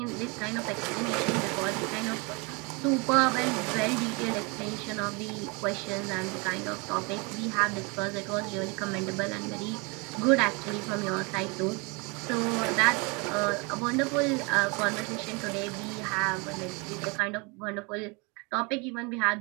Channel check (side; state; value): left; quieter; 29.6 dB